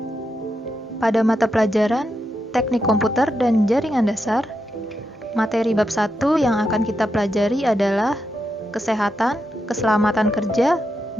Pada mata pelajaran Teknik Komputer dan Jaringan Dasar, materi bab 1 yang akan kita pelajari adalah Kesehatan, Keselamatan Kerja,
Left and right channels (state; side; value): normal; both; correlation 0.85